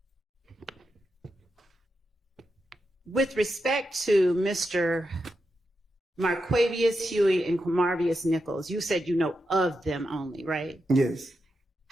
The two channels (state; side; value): normal; both; correlation 0.87